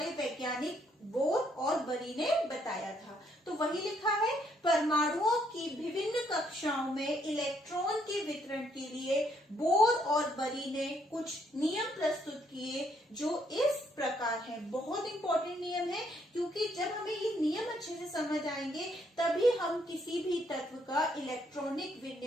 वैज्ञानिक बोर और बरी ने बताया था। तो वही लिखा है, परमाणुओं की विभिन्न कक्षाओं में इलेक्ट्रॉन के वितरण के लिए बोर और बरी ने कुछ नियम प्रस्तुत किए जो इस प्रकार हैं। बहुत इंपॉर्टेंट नियम है क्योंकि जब हमें ये नियम अच्छे से समझ आएंगे तभी हम किसी भी तत्व का इलेक्ट्रॉनिक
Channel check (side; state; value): both; normal; correlation 0.70